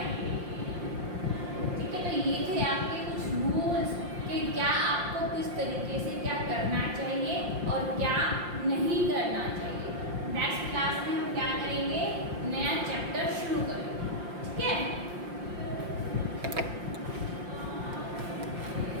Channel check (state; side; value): late; left; 5.7 ms